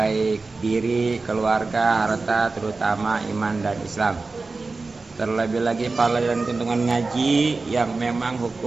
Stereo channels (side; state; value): left; quieter; 3.8 dB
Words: diri, keluarga, harta, terutama iman dan Islam. Terlebih lagi pahala dan keuntungan ngaji yang memang